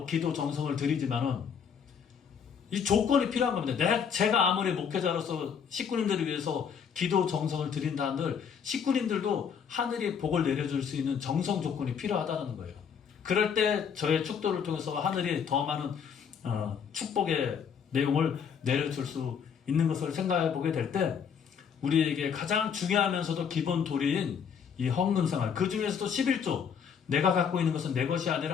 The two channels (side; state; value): right; quieter; 7.2 dB